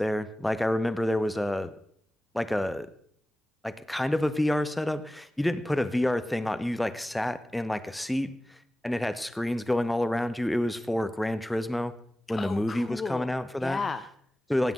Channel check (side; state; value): both; normal; correlation 0.96